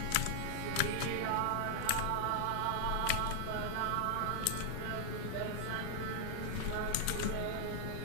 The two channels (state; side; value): different; both; correlation 0.00